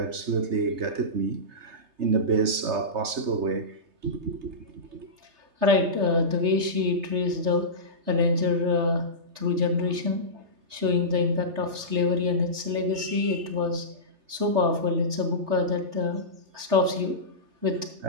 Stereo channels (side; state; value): left; late; 3.3 ms